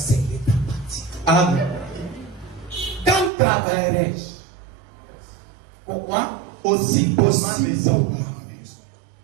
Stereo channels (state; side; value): drops out; left; at 3.3 s